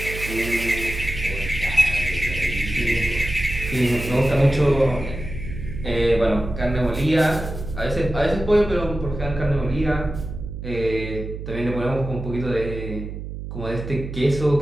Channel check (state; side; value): noise; right; hum, 8 dB below the sound